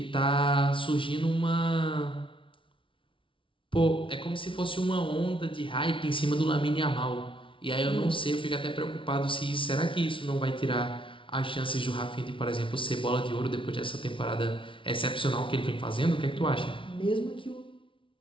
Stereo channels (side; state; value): right; late; 0.25 ms